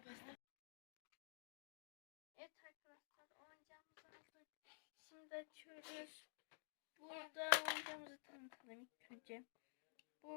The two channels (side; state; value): right; silent; digital silence